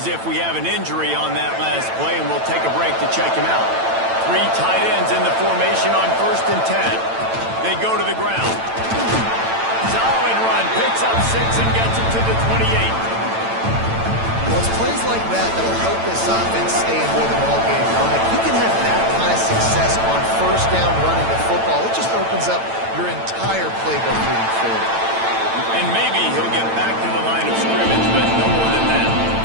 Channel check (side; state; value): left; late; 8.9 ms